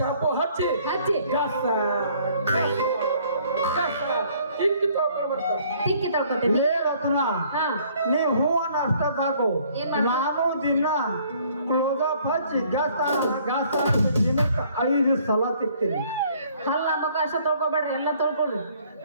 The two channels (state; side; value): inverted; both; correlation -0.60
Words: ಹಚ್ಚಿ ತಿಕ್ಕಿ ತಳ್ಕೊತೀನಿ ರತ್ನ ನೀ ಹೂವನ್ನ ಅಷ್ಟ ಸಾಕು ನಾನು ದಿನ ಕ್ಲೋಸಪ್ ಹಚ್ಚಿ ಗಾಸ್ತ ದಿನಕ್ಕೆ 5 ಸಲ ತಿಕ್ತೀನಿ ಅಲ್ಲ ಮಗ ಅಷ್ಟ ತೊಳ್ಕೊಬೇಡ್ರಿ ಎಲ್ಲ ತೊಳ್ಕೊಳ್ರಿ